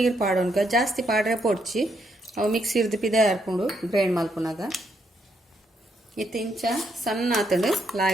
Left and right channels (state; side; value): normal; both; correlation 0.76